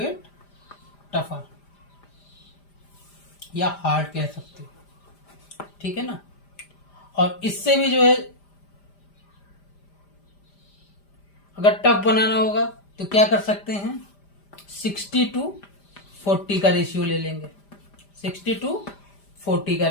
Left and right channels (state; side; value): late; right; 5.0 ms